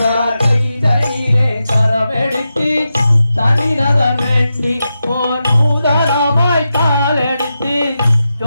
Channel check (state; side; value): inverted; both; correlation -0.89